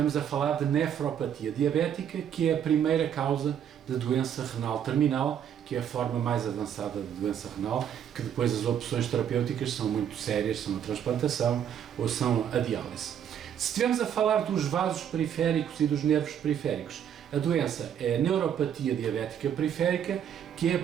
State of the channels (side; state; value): left; quieter; 9.1 dB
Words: a falar de nefropatia diabética, que é a primeira causa de doença renal terminal, que é a forma mais avançada de doença renal, que depois as opções terapêuticas são muito sérias, são a transplantação ou são a diálise. Se estivermos a falar dos vasos periféricos e dos nervos periféricos, a doença é a neuropatia diabética periférica, que é a